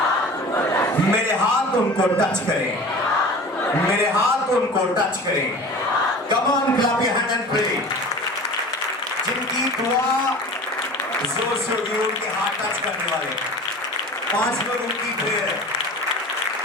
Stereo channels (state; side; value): normal; both; correlation 0.39